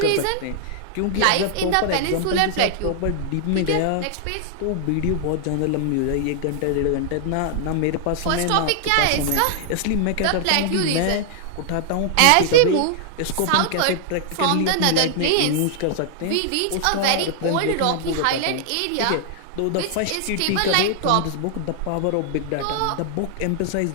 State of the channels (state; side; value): different; both; correlation -0.01